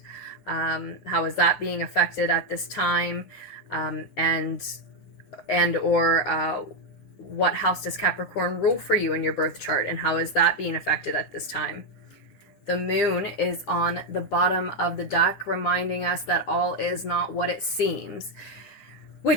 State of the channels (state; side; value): late; right; 9.9 ms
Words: How is that being affected at this time? And or what house does Capricorn rule for you in your birth chart, and how is that being affected at this time? The moon is on the bottom of the deck, reminding us that all is not what it seems,